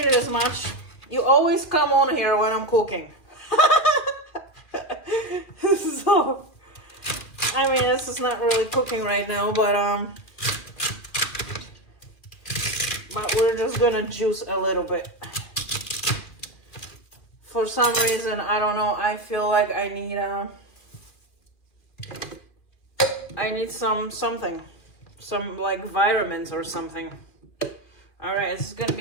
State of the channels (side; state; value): right; late; 2.4 ms